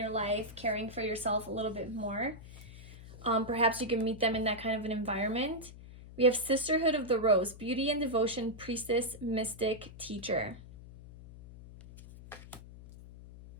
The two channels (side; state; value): left; noise; hum, 16 dB below the sound